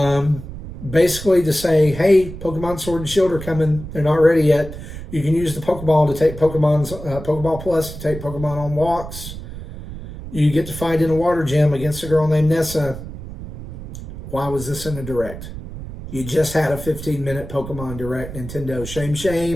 Basically to say, hey, Pokemon Sword and Shield are coming. They're not ready yet. You can use the Pokeball to take Pokeball Plus to take Pokemon on walks. You get to fight in a water gym against a girl named Nessa. Why was this in a Direct? You just had a 15-minute Pokemon Direct, Nintendo. Shame,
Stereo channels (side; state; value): right; noise; rumble, 11 dB below the sound